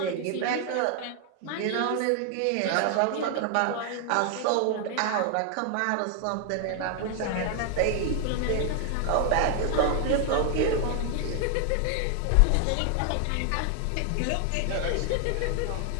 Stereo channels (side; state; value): both; different; correlation 0.00